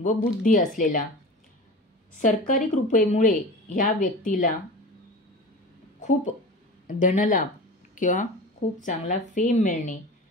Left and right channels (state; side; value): normal; both; correlation 0.34